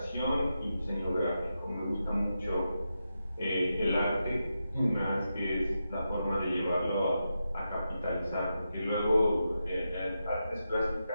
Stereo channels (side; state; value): both; inverted; correlation -0.88